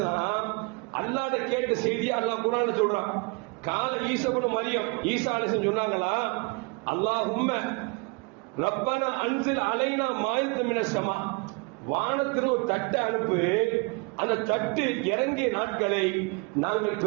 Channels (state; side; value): quieter; left; 30.8 dB